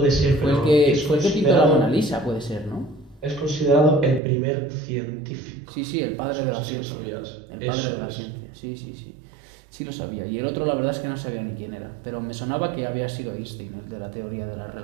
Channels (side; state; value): left; drops out; at 4.2 s